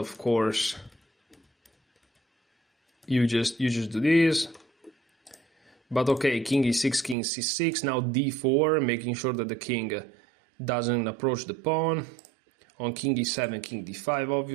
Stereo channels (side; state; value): left; drops out; at 7.2 s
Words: course, you just do this. But okay, king e6, king c6, now d4, making sure that the king doesn't approach the pawn. On king e7, king d5,